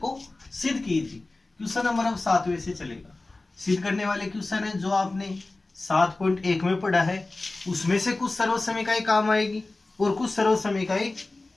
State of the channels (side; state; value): right; quieter; 3.1 dB